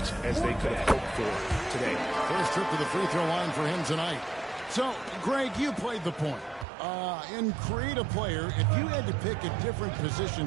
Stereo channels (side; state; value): left; drops out; at 6.7 s